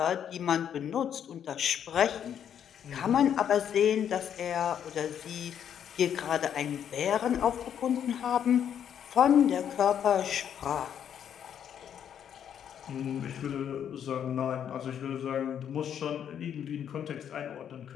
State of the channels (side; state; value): right; quieter; 9.0 dB